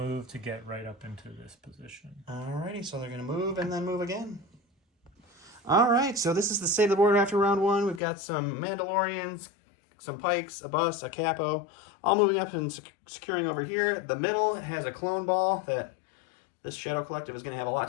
to get right up into this position. Alrighty, so they're going to move and then move again. Alright, so this is the state of the board after round 1. We've got some Mandalorians, some Pikes, a bus, a Capo, all moving up and securing over here. The middle has a clone ball that this Shadow Collective is going to have a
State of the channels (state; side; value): drops out; right; at 8.0 s